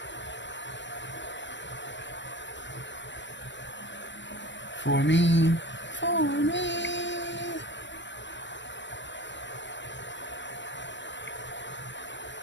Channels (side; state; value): right; late; 0.53 ms